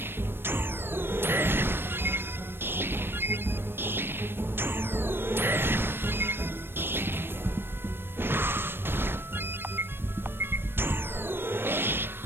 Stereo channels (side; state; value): left; late; 0.10 ms